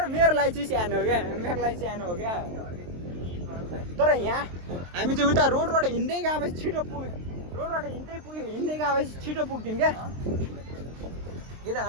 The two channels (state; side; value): late; left; 23 ms